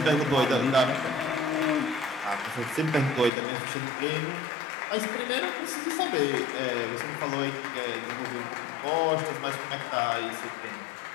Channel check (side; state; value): right; drops out; at 3.3 s